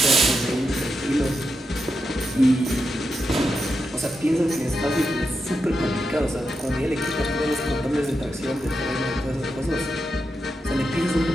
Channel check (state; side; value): normal; both; correlation 0.86